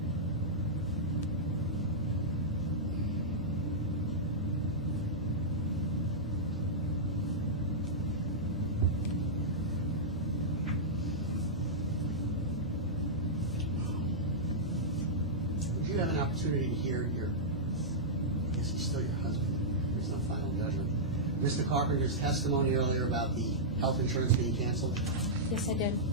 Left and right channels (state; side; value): normal; both; correlation -0.12